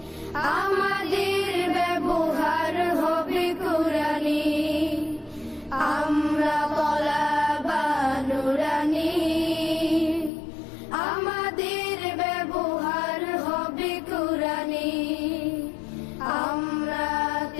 আমাদের ব্যবহার হবে কুরআনি। আমরা তলাবা নুরানি, আমাদের ব্যবহার হবে কুরআনি। আমরা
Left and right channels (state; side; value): drops out; right; at 10.3 s